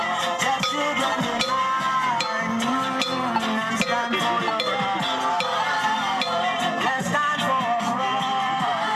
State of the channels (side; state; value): both; identical; correlation 1.00